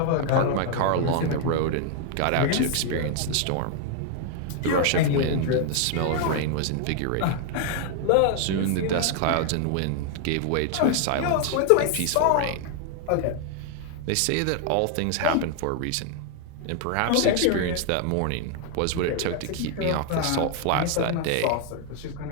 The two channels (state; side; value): different; both; correlation 0.00